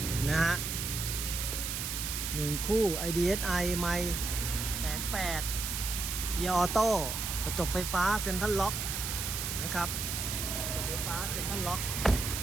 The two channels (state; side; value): noise; right; hiss, 3 dB below the sound